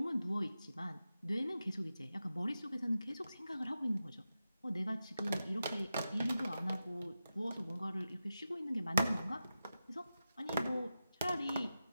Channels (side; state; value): both; inverted; correlation -0.91